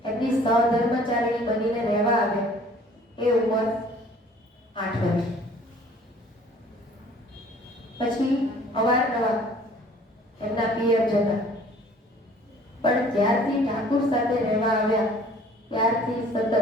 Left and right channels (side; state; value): both; normal; correlation 0.53